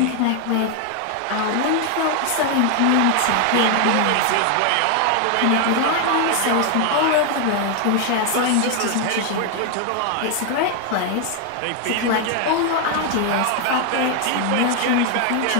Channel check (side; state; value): both; different; correlation 0.01